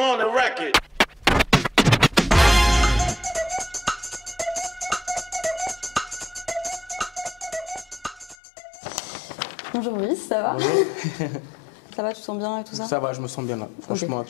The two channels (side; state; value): right; drops out; at 8.3 s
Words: the record. Bonjour Brice, ça va? Bonjour. Ça va, tu te sens bien et tout ça? Ça va, je me sens bien là. Franchement,